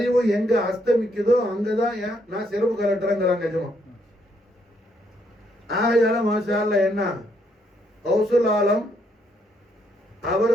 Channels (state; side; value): normal; both; correlation 0.73